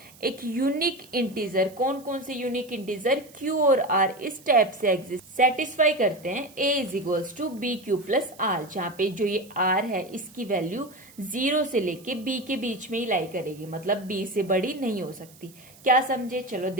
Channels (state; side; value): noise; right; hiss, 24 dB below the sound